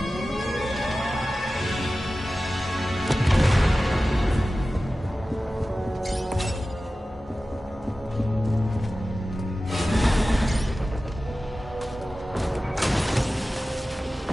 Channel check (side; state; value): both; normal; correlation 0.95